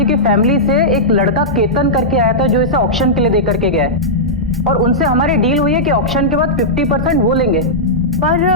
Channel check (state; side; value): normal; both; correlation -0.12